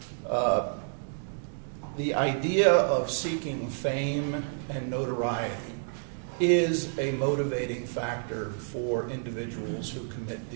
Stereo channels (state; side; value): silent; left; digital silence